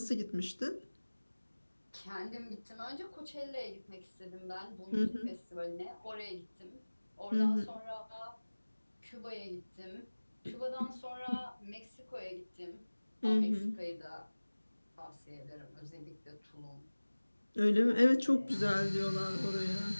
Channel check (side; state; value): both; inverted; correlation -1.00